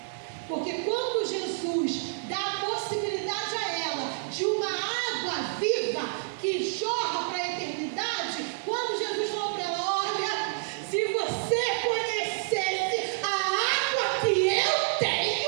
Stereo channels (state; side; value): silent; left; digital silence